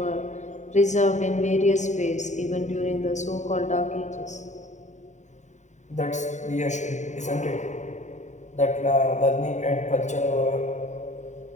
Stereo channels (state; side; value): late; right; 0.34 ms